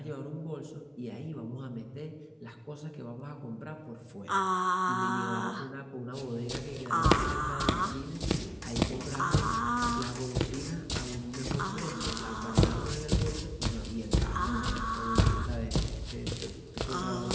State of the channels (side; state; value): both; identical; correlation 1.00